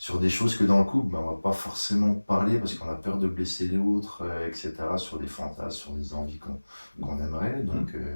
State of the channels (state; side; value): inverted; both; correlation -1.00